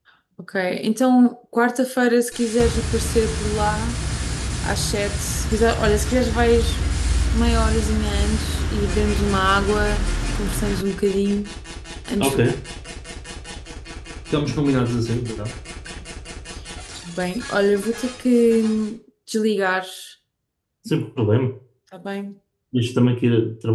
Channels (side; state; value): both; identical; correlation 1.00